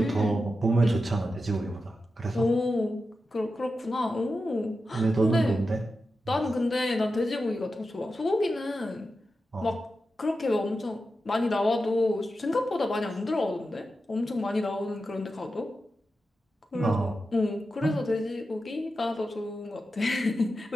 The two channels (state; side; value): normal; both; correlation 0.90